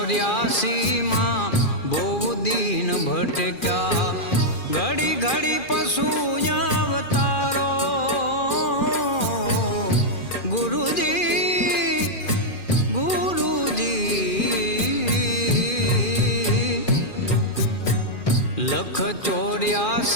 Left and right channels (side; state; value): right; late; 2.4 ms